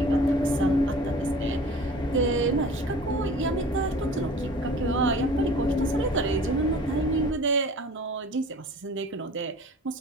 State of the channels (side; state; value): both; normal; correlation 0.44